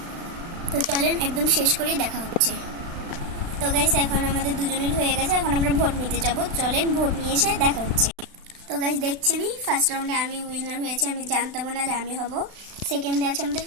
তো চলেন একদম শেষ করেই দেখা হচ্ছে। তো গাইস এখন আমাদের দুজনের হয়ে গেছে, এখন আমরা ভোট নিতে যাবো। চলেন ভোট নিয়ে এসে দেখা হচ্ছে। তো গাইস দেখছেনই ফার্স্ট রাউন্ডে আমি উইনার হয়েছে, আমি জানতাম না যে আমি হব। সেকেন্ডে আছে আমাদের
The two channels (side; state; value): left; late; 36 ms